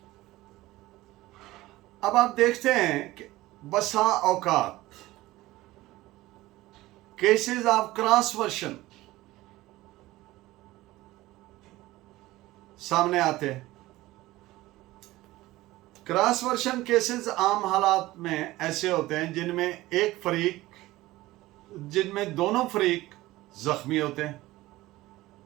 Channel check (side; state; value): left; quieter; 17.8 dB